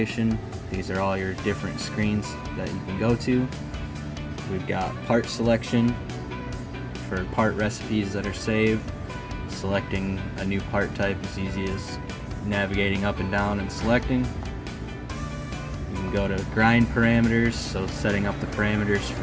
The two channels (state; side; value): identical; both; correlation 1.00